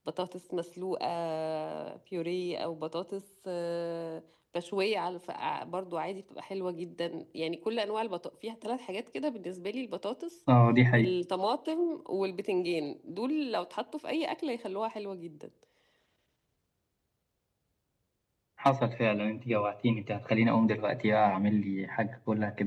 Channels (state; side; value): identical; both; correlation 1.00